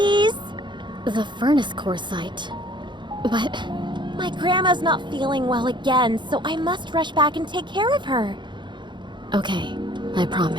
The furnace core site. But... My grandma's not feeling well again, so I must rush back and take care of her. Okay, I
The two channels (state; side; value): late; left; 0.23 ms